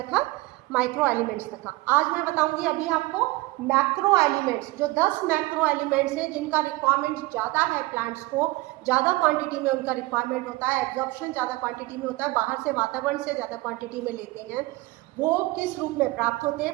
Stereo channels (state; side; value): quieter; left; 21.3 dB